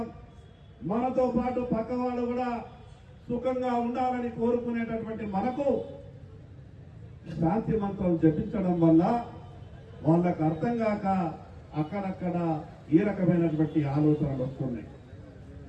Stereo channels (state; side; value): identical; both; correlation 1.00